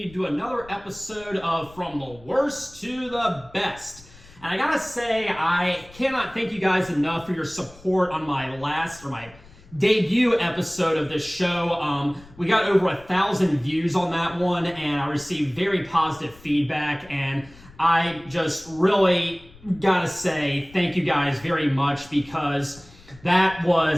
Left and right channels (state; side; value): noise; left; rumble, 23 dB below the sound